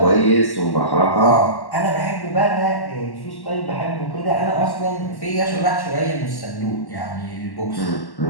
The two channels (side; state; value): right; late; 1.1 ms